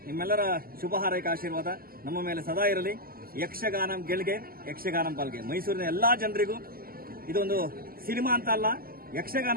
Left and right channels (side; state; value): left; late; 0.43 ms